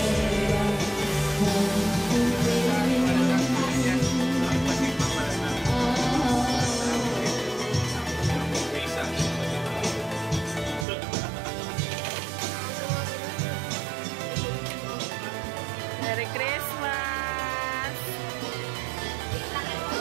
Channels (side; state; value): left; drops out; at 10.9 s